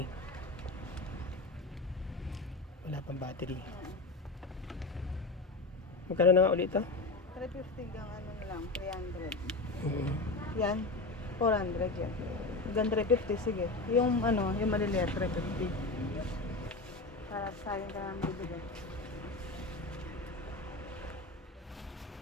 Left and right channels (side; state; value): right; quieter; 3.3 dB